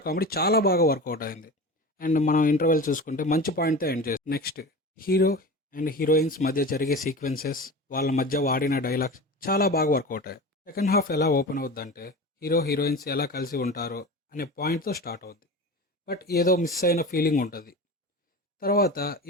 కామెడీ చాలా బాగా వర్కౌట్ అయింది. అండ్ మనం ఇంటర్వెల్ చూసుకుంటే మంచి పాయింట్తో ఎండ్ చేస్తాం. నెక్స్ట్, హీరో అండ్ హీరోయిన్స్ మధ్య జరిగే సీక్వెన్సెస్, వాళ్ళ మధ్య వాడిన డైలాగ్స్ చాలా బాగా వర్కౌట్ అయ్యాయి. సెకండ్ హాఫ్ ఎలా ఓపెన్ అవుద్దంటే హీరో హీరోయిన్స్ ఎలా కలిసి ఉంటారో అనే పాయింట్తో స్టార్ట్ అవుద్ది, బట్ ఏదో మిస్ అయిన ఫీలింగ్ ఉంటుంది. తర్వాత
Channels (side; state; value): both; normal; correlation 0.31